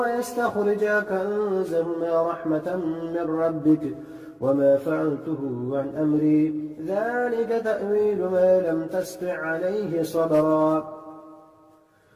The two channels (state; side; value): identical; both; correlation 1.00